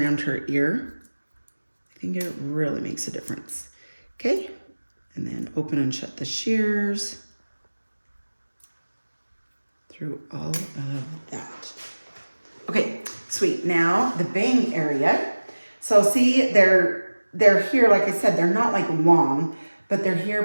her ear, I think it really makes a difference. Okay, and then open and shut the shears through all of that. Okay, sweet. Now the bang area. So see, they're here, like I said, they're not like long, but they're here,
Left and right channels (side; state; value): both; inverted; correlation -1.00